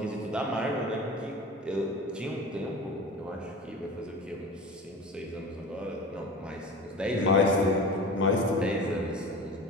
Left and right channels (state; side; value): normal; both; correlation 0.35